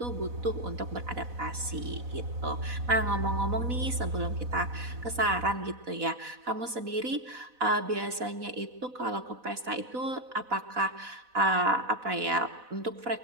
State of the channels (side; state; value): left; late; 4.0 ms